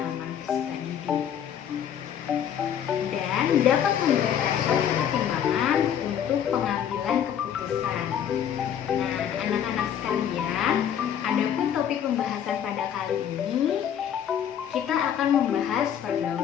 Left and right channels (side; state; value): right; quieter; 9.2 dB